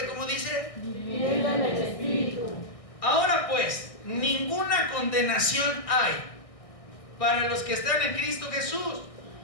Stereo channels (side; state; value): right; late; 1.6 ms